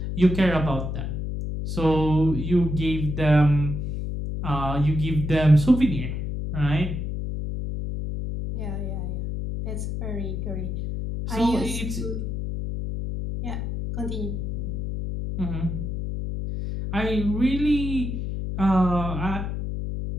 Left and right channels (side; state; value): left; noise; hum, 3 dB below the sound